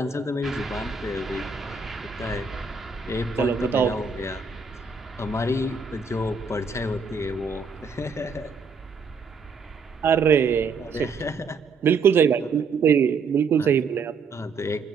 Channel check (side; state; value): left; quieter; 4.8 dB